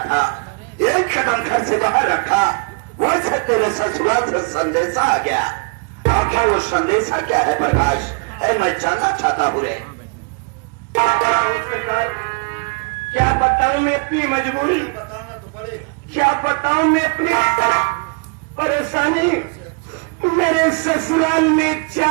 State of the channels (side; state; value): left; quieter; 33.9 dB